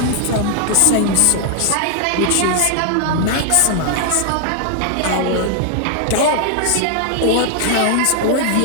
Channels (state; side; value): different; both; correlation 0.00